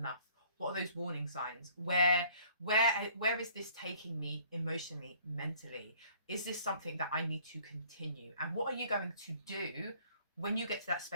What are those warning signs? Where is this taking me emotionally, mentally? Is this something that I need to continue? And what are you going to do when you get to that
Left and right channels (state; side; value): inverted; both; correlation -0.57